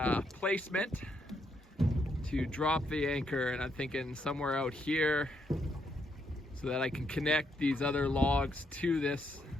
placement to drop the anchor, and I'm thinking somewhere out here so that I can connect these other logs to this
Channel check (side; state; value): both; normal; correlation 0.76